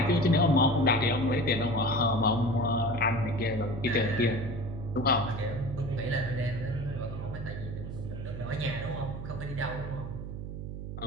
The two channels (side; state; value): right; noise; hum, 8 dB below the sound